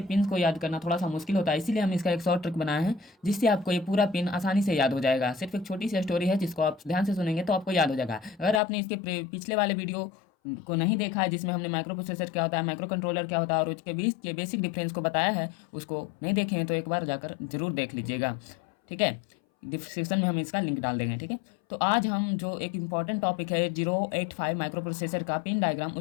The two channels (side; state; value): right; drops out; at 8.6 s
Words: पिन को याद करना थोड़ा सा मुश्किल होता है, इसीलिए हम इसका एक शॉर्ट ट्रिक बनाए हैं जिससे आपको ये पूरा पिन आसानी से याद हो जाएगा। सिर्फ एक छोटी सी स्टोरी है जिसको आप ध्यान से सुनेंगे तो आपको याद हो जाएगा। अगर आपने इसके पिछले वाले वीडियो को नहीं देखा है जिसमें हमने माइक्रो प्रोसेसर क्या होता है, माइक्रो कंट्रोलर क्या होता है और उसके बीच के बेसिक डिफरेंस को बताया है, उसको नहीं देखे हैं तो एक बार जाकर जरूर देख लीजिएगा। ठीक है, डिस्क्रिप्शन में हम इसका लिंक डाल देंगे। ठीक है, तो आज हम जो एक इम्पॉर्टेंट टॉपिक है 085 माइक्रो प्रोसेसर का पिन डायग्राम,